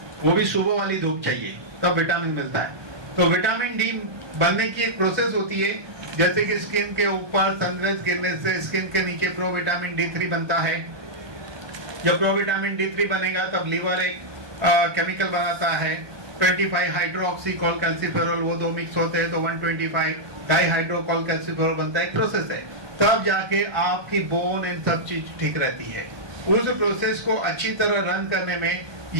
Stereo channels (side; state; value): left; late; 1.2 ms